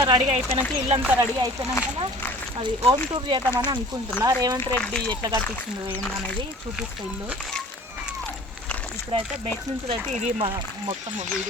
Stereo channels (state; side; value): normal; both; correlation 0.46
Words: రెడీ అయిపోయినాక ఇల్లంతా రెడీ అయిపోయినాక అది హోమ్ టూర్ చేద్దామని అనుకుంటున్నా. రేవంత్ రెడ్డి ఎట్లా కట్టించిండు ఏందనేది చూపిస్తా ఇల్లు. ఇప్పుడైతే బయట నుంచి అయితే ఇది మా మొత్తం